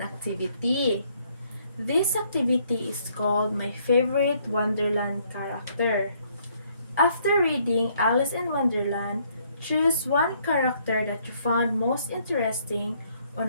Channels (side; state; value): both; inverted; correlation -0.68